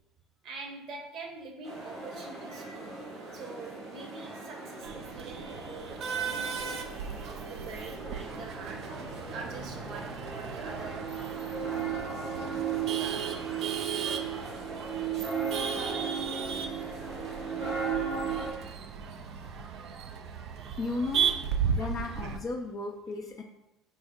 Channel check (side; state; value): left; quieter; 5.2 dB